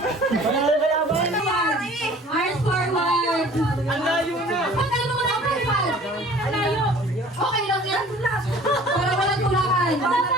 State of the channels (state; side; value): normal; both; correlation 0.49